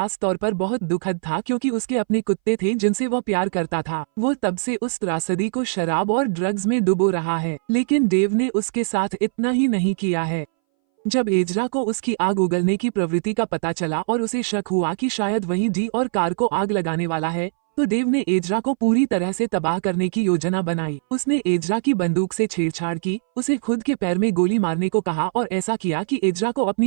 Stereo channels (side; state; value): left; silent; 62 dB below the other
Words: तौर पर बहुत दुखद था क्योंकि उसके अपने कुत्ते थे जिनसे वह प्यार करता था। वो तब से उस त्रासदी को शराब और ड्रग्स में डुबो रहा है, लेकिन देव ने उसके साथ इतना ही नहीं किया है। जब एजरा को उसकी आग उगलने की प्रवृत्ति का पता चला और उसे शक हुआ कि शायद वही डी और कार को आग लगाने वाला है, तो देव ने एजरा को पूरी तरह से तबाह करने की योजना बनाई। उसने एजरा की बंदूक से छेड़छाड़ की, उसे खुद के पैर में गोली मारने को कहा और ऐसा किया कि एजरा को